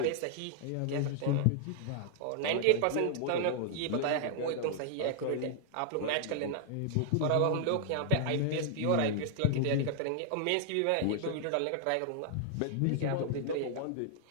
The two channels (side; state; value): both; different; correlation -0.01